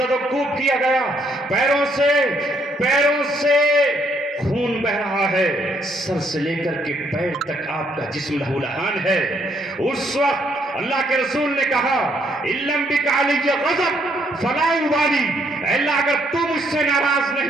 و کوب کیا گیا، پیروں سے خون بہ رہا ہے، سر سے لے کر کے پیر تک آپ کا جسم لہو لہان ہے، اس وقت اللہ کے رسول نے کہا اِلَّمْ بِكَ عَلِيَّ غَضَبْ فَلَا أُبَالِي، اے اللہ اگر تو مجھ سے ناراض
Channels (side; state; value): both; normal; correlation 0.70